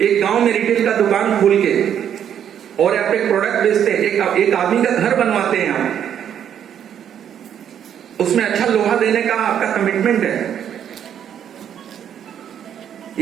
एक गांव में रिटेल का दुकान खोल के और आप एक प्रोडक्ट बेचते हैं, एक आदमी का घर बनवाते हैं आप, उसमें अच्छा लोहा देने का आपका कमिटमेंट है,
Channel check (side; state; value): left; quieter; 9.3 dB